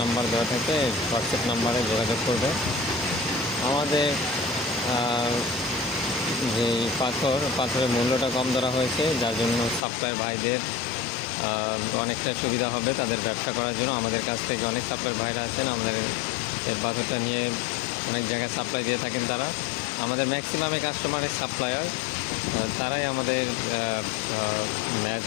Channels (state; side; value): drops out; right; at 9.9 s